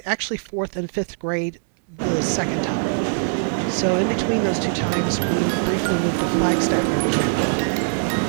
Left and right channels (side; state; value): left; silent; 64 dB below the other